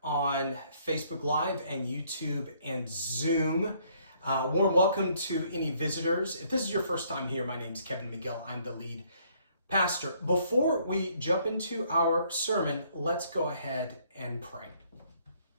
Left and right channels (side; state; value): both; inverted; correlation -0.65